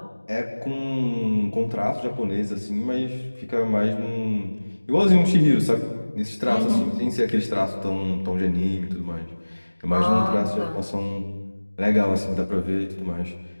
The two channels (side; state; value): both; inverted; correlation -1.00